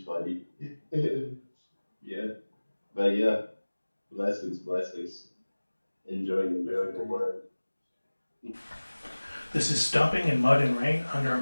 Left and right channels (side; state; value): both; inverted; correlation -1.00